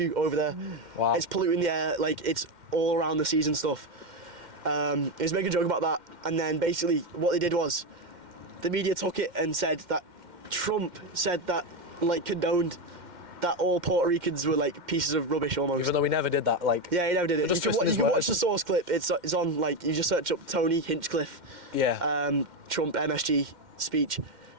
over there. Wow. It's polluting the air, it's all around the seas and stuff. He was making a joke about that, and then basically what they did was, the media took it and said that Trump said that, condoned that all Puerto Ricans were pieces of rubbish almost. Even though we never did that, Yeah, he never did it. You can watch the source clip. It's on you just search up Tony Hinchcliffe. Yeah. Trump MSG speech.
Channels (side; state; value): left; late; 2.1 ms